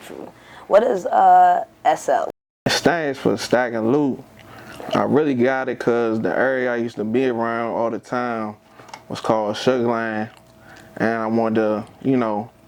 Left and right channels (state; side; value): identical; both; correlation 1.00